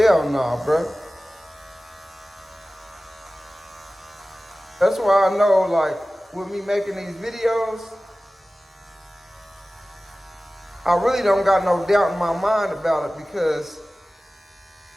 no, bro. That's why I know, like, with me making these videos, I really don't got no doubt in my mind about it, because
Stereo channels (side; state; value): both; normal; correlation 0.96